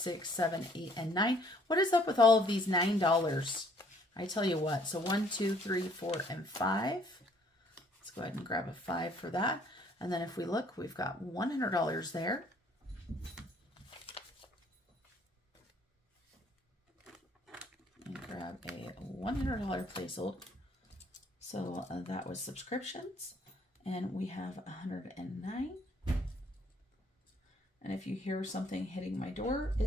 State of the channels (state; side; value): normal; both; correlation 0.62